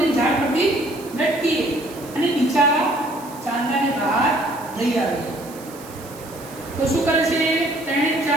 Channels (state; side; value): noise; right; hiss, 19 dB below the sound